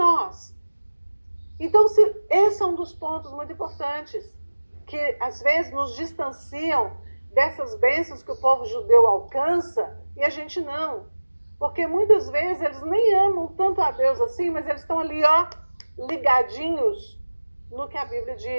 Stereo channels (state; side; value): inverted; both; correlation -1.00